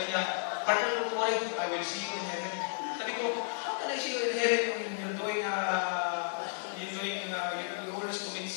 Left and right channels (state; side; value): silent; right; digital silence